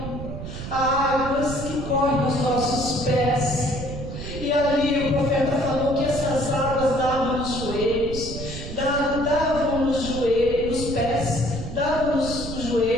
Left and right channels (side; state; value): right; noise; rumble, 8 dB below the sound